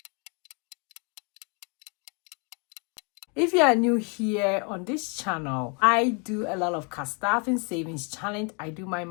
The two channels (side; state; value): right; quieter; 34.6 dB